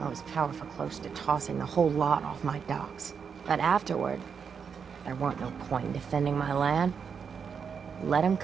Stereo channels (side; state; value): left; quieter; 6.5 dB